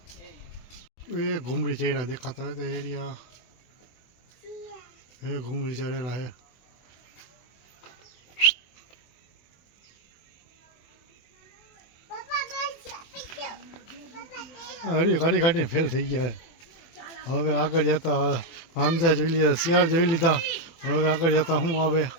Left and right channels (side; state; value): right; late; 24 ms